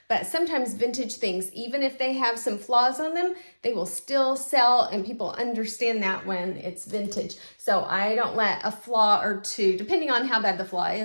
But sometimes vintage things, even if they have some flaws on them, they will still sell, and people understand that when it's vintage. So I don't let a flaw or two, depending on how bad the flaw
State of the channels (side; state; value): both; inverted; correlation -1.00